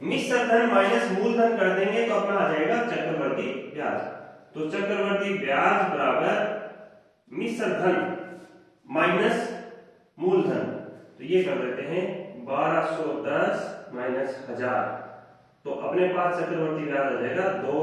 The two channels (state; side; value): identical; both; correlation 1.00